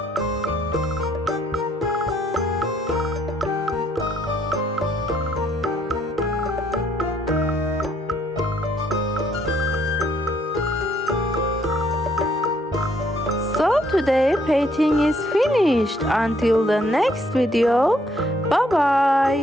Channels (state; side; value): normal; both; correlation 0.68